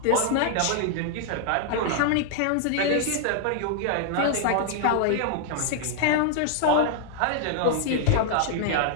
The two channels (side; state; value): both; different; correlation 0.00